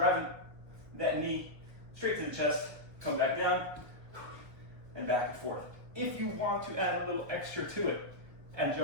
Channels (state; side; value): late; left; 1.3 ms